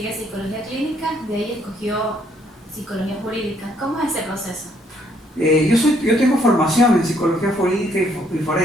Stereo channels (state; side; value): normal; both; correlation 0.68